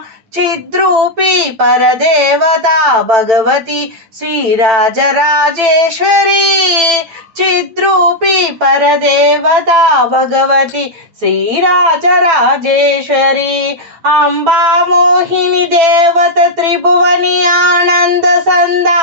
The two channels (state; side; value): late; left; 9.0 ms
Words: చిద్రూపీ పరదేవతా భగవతి శ్రీరాజరాజేశ్వరి చిద్రూపీ పరదేవతా భగవతి శ్రీరాజరాజేశ్వరి అంబా మోహిని దేవత త్రిభువని ఆనంద